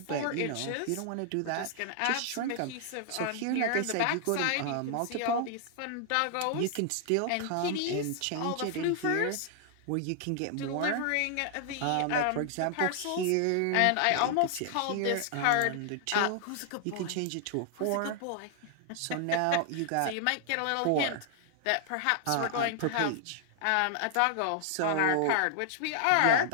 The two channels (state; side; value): different; both; correlation 0.00